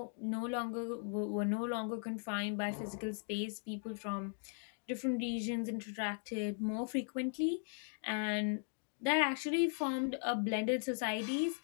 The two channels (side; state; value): right; silent; 52 dB below the other